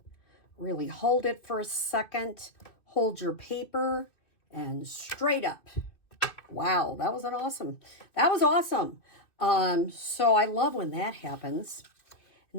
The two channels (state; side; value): late; right; 2.5 ms